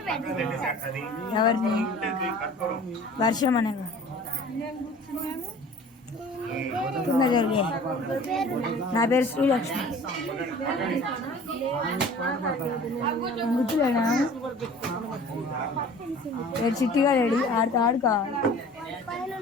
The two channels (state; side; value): normal; both; correlation 0.45